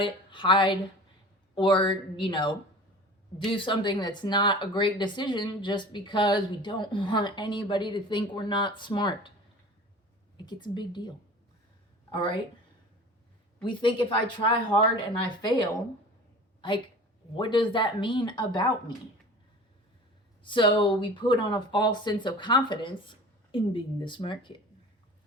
hide, or, do something that's not a great decision just because we don't want anybody to think we're not smart. It gets a big deal. All right? We think if I try hard and I fail, like, what does that mean about me? So we put on a false sense of confidence in being the smart kid,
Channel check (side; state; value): both; normal; correlation 0.40